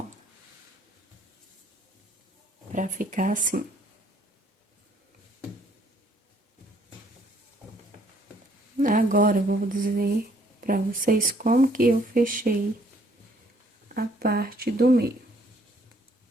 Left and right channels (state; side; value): normal; both; correlation 0.64